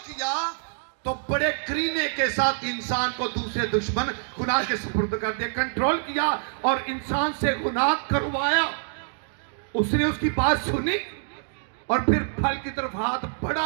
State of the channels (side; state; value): left; silent; digital silence